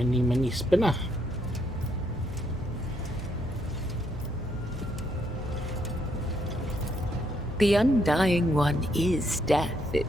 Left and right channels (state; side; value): normal; both; correlation 0.74